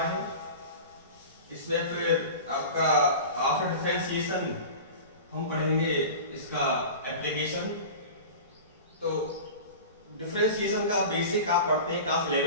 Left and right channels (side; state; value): both; inverted; correlation -0.33